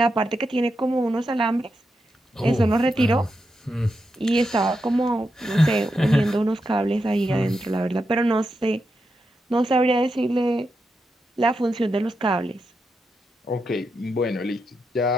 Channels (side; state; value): both; normal; correlation 0.86